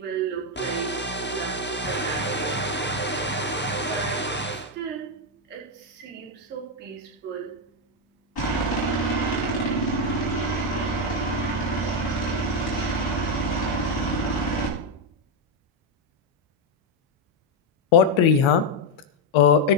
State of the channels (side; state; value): both; normal; correlation 0.03